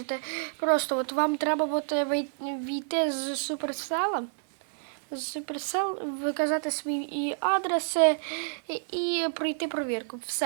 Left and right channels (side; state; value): left; silent; digital silence